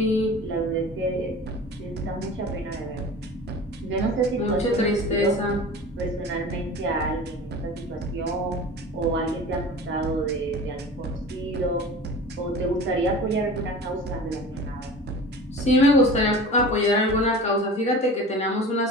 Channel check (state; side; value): normal; both; correlation 0.37